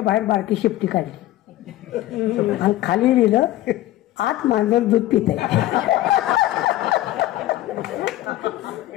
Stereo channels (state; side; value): quieter; right; 15.1 dB